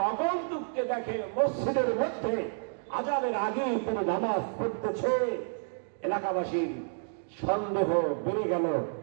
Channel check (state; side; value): silent; left; digital silence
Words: আগন্তুককে দেখে মসজিদের মধ্যে আজানের আগে তিনি নামাজ পড়তেছে। এলাকাবাসীর সন্দেহ বেড়ে গেল,